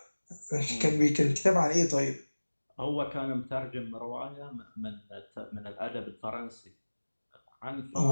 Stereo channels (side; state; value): both; inverted; correlation -1.00